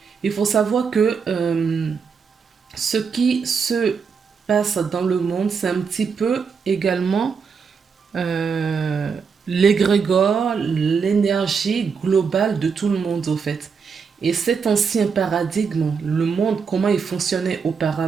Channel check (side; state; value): left; quieter; 5.8 dB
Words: Il faut savoir que ce qui se passe dans le monde, c'est un petit peu également l'égrégore, l'énergie globale de tout le monde, au fait. Et cet ancien paradigme, le monde, comment il fonctionnait